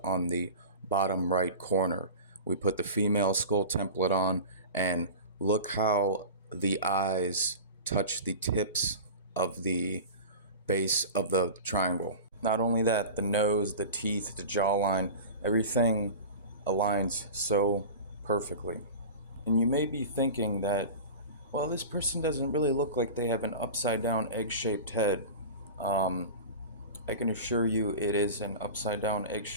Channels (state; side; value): inverted; both; correlation -0.33